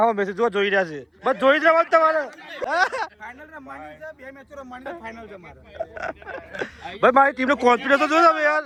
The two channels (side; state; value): both; identical; correlation 1.00